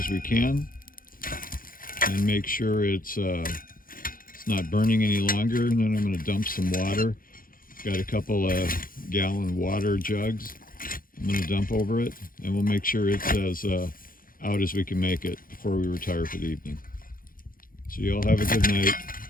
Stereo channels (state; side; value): late; right; 0.41 ms